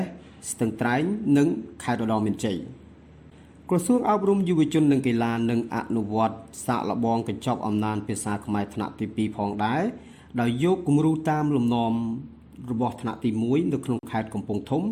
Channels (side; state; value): both; identical; correlation 1.00